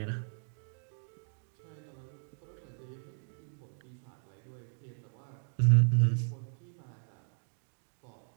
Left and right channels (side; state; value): left; silent; 54 dB below the other